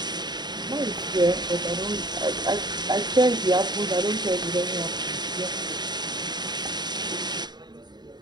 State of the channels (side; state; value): left; late; 0.21 ms